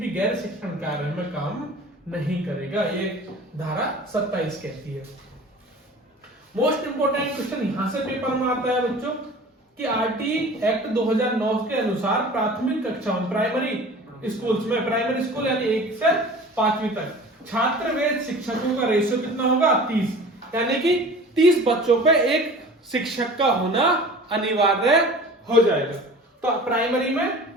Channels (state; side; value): normal; both; correlation 0.42